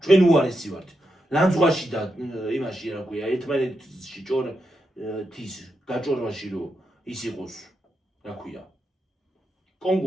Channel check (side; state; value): both; normal; correlation 0.85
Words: ჩვენ უარესი ვართ ლანძღვაში და იმაში რა ქვია ერთმანეთში თვის გაჭორვაში რო ის იყოს რა ქვია